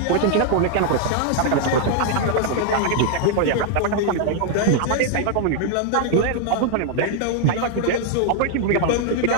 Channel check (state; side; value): different; both; correlation 0.00